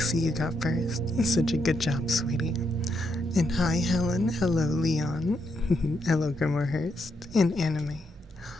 you got first. Such a good job, sweetie. And hi, Helen. Hello, Leon. Hello, Grimorhurst. And Anime.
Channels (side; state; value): both; normal; correlation 0.79